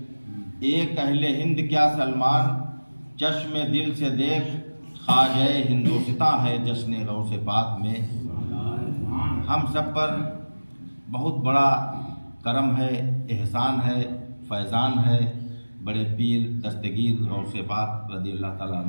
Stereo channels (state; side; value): inverted; both; correlation -1.00